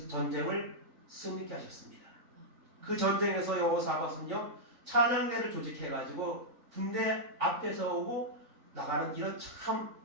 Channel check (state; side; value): late; left; 3.4 ms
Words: 전쟁을 승리케 하셨습니다. 그 전쟁에서 여호사밧은요 찬양대를 조직해가지고 군대 앞에 서고 나가는 이런 참